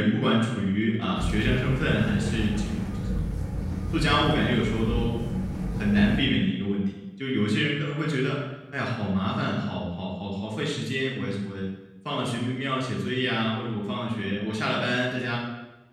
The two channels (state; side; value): identical; both; correlation 1.00